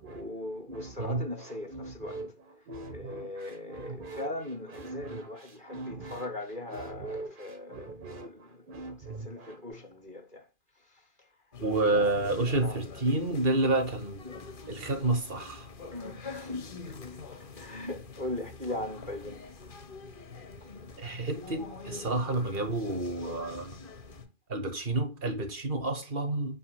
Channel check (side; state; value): left; late; 2.4 ms